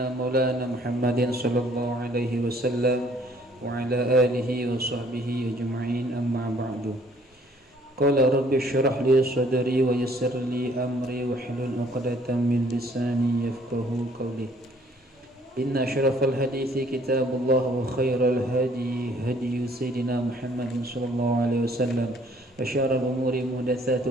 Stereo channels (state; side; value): normal; both; correlation 0.60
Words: مولانا محمد صلى الله عليه وسلم وعلى آله وصحبه أجمعين أما بعد قال رب اشرح لي صدري ويسر لي أمري واحلل عقدة من لساني يفقه قولي إن أشرف الحديث كتاب الله وخير الهدي هدي سيدنا محمد صلى الله عليه وسلم وشر الأمور